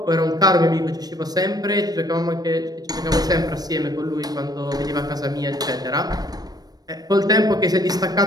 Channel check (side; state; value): left; late; 0.19 ms